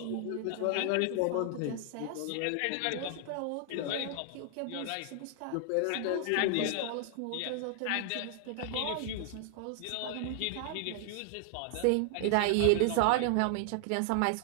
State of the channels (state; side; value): different; both; correlation 0.00